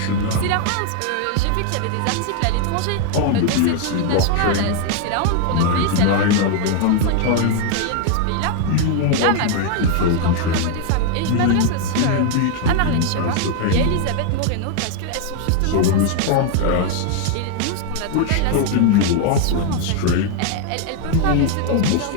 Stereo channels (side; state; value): both; different; correlation 0.00